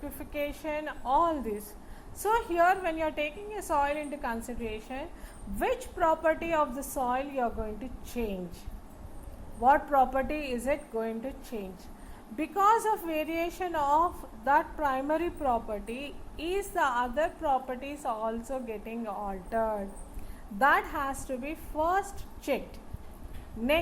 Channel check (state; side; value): identical; both; correlation 1.00